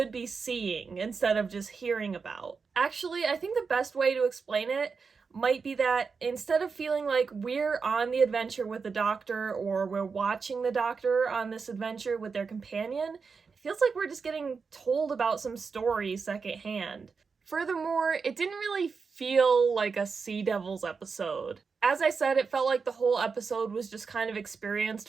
be seeing, instead of just hearing about. Actually, I think the best way to explain it might be that instead of feeling like we're on the adventure with the doctor or we're watching the doctor on this adventure with their companion, it feels like we're just getting told about some story secondhand. Furthermore, it didn't really feel like a Sea Devils episode. As I said, it felt like the whole episode was just kind of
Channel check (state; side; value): quieter; left; 5.2 dB